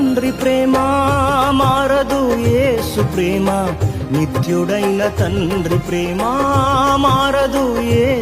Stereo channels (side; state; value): both; identical; correlation 1.00